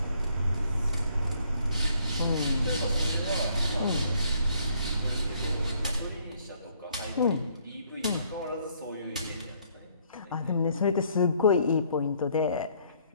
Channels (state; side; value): inverted; both; correlation -0.66